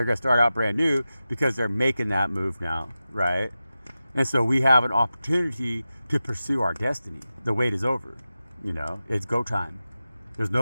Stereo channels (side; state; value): both; inverted; correlation -0.94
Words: going to start out brand new because they're making that move now, right? And so we have an opportunity to pursue our destiny. The wait is over, you know, it's go time. There's